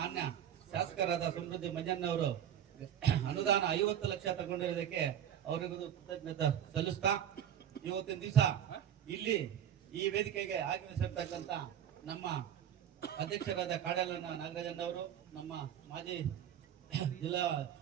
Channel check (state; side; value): quieter; left; 9.8 dB